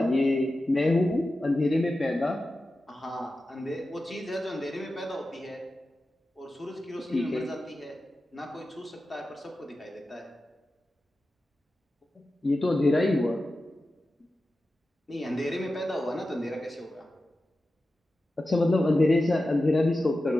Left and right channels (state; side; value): normal; both; correlation 0.93